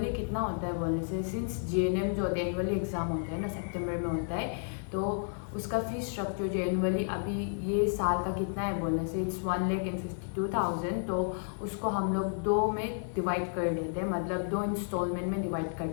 कितना होता है बोलने से, सिंस जीएनएम जो होता है एनुअली एग्ज़ाम होता है ना, सितंबर में होता है, तो उसका फीस स्ट्रक्चर जो एनुअली अभी ये साल का कितना है बोलने से इट्स 1,52,000। तो उसको हम लोग 2 में डिवाइड कर देते हैं, मतलब 2 इंस्टॉलमेंट में डिवाइड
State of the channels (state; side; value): silent; right; 56 dB below the other